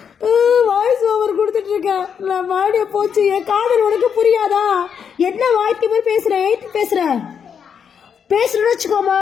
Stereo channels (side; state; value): right; quieter; 7.3 dB